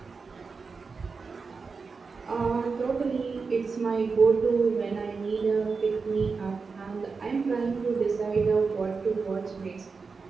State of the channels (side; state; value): left; quieter; 4.8 dB